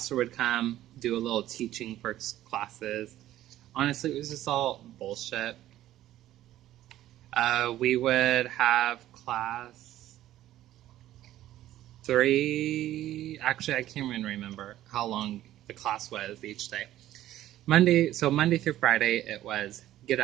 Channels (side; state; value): left; quieter; 13.7 dB